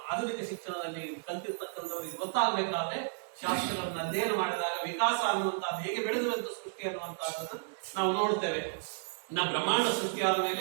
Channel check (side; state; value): left; silent; 56 dB below the other